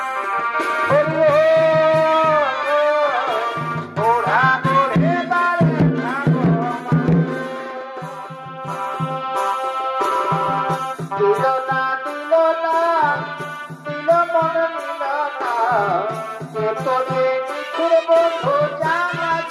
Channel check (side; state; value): both; identical; correlation 1.00